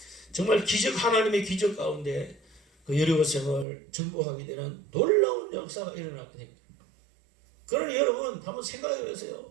정말 하나님의 기적 가운데 그 여리고성을 정복하게 되는 놀라운 역사가 일어나게 됩니다. 그러니 여러분 한번 생각해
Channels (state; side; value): drops out; left; at 3.7 s